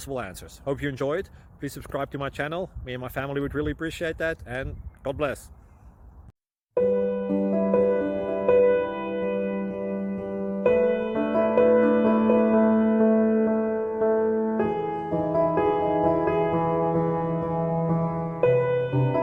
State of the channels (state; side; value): identical; both; correlation 1.00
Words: answers. Hope you enjoyed. Please subscribe to my channel. Me and my family would really appreciate that, and God bless.